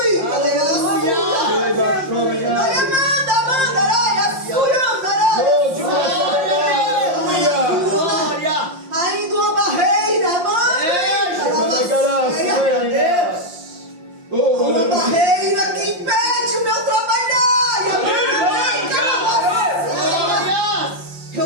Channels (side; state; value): left; late; 5.6 ms